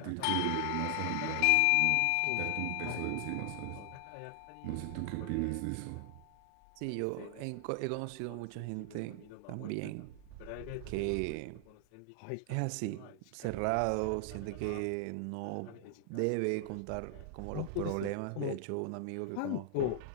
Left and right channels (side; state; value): both; different; correlation 0.00